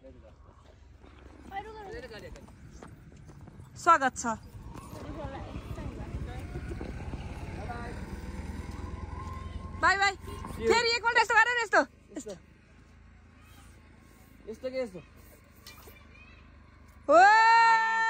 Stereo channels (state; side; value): identical; both; correlation 1.00